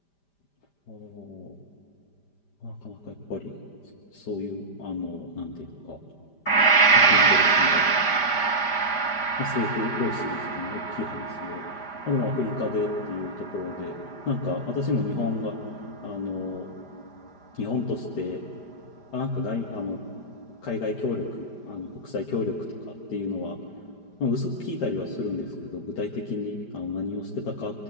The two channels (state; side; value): late; right; 5.0 ms